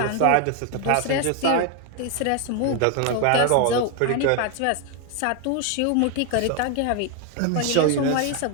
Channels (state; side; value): different; both; correlation 0.01